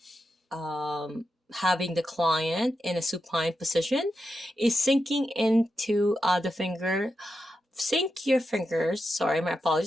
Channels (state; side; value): normal; both; correlation 0.88